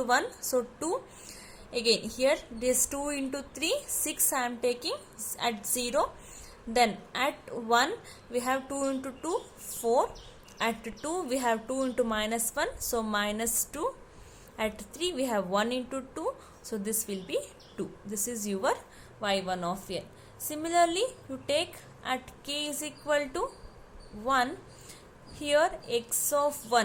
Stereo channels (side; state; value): both; identical; correlation 1.00